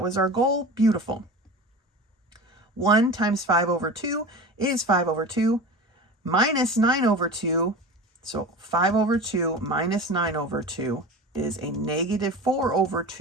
was our goal. Beautiful. 1 times 5 over 2 is 5 over 2 minus 9 over 2. So 5 over 2 minus 9 over 2 is a negative 4 over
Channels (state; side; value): normal; both; correlation 0.32